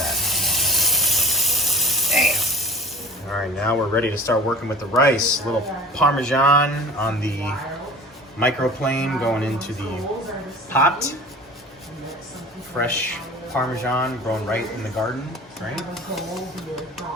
Damn. All right, now we're ready to start working with the rice. A little Parmesan on the microplane going into the pot. Fresh Parmesan grown right in the garden, right?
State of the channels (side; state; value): both; normal; correlation 0.42